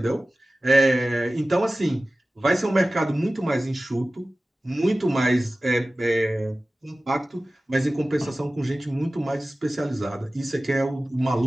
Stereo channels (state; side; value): normal; both; correlation 0.96